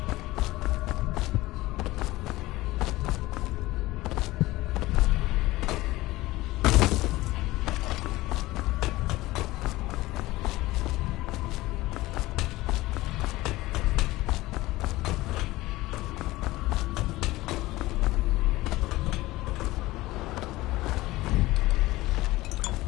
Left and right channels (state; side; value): quieter; right; 18.6 dB